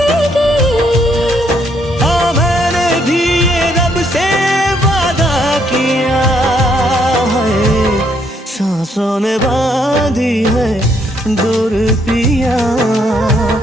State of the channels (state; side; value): normal; both; correlation 0.71